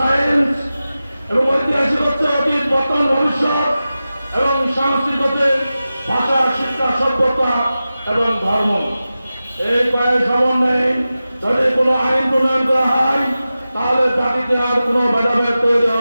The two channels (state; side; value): inverted; both; correlation -0.94